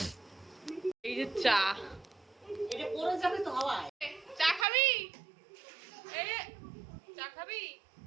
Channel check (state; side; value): drops out; left; at 4.7 s